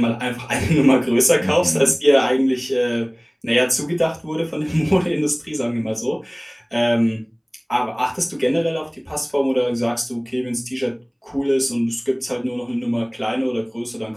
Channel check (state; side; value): identical; both; correlation 1.00